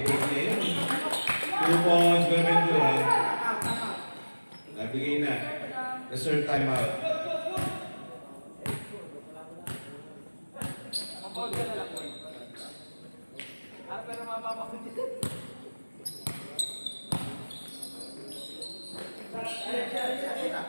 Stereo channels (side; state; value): both; inverted; correlation -1.00